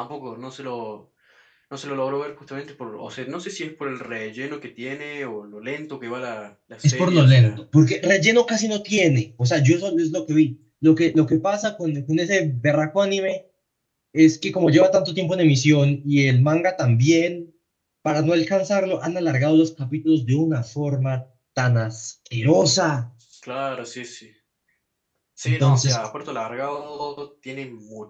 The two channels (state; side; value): identical; both; correlation 1.00